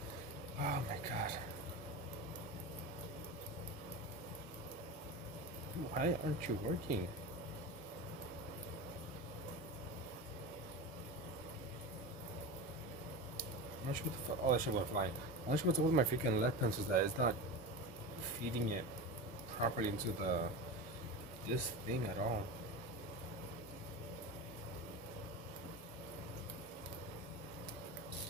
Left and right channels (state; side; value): normal; both; correlation 0.25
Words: Oh my god. Why aren't you working? I'm not sure what the fuck. Oh, that shit went flying. I'm not sure what's up with my freaking left pencil that it's not feeding it properly into this thing at all.